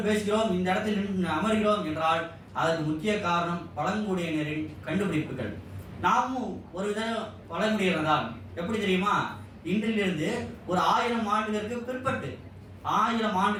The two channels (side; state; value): both; identical; correlation 1.00